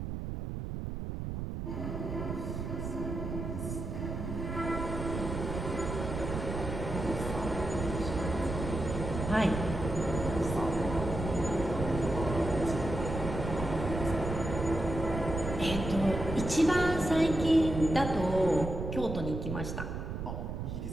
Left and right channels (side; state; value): right; noise; rumble, 5 dB below the sound